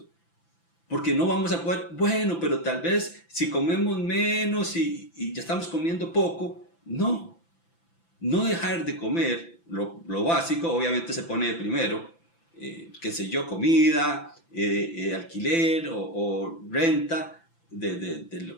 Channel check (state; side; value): late; right; 5.9 ms